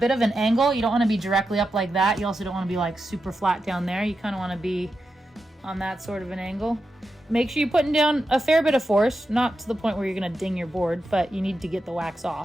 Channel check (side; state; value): both; normal; correlation 0.88